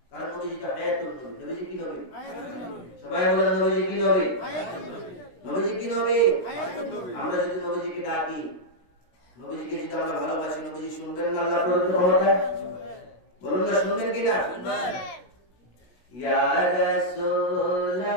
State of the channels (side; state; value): right; late; 16 ms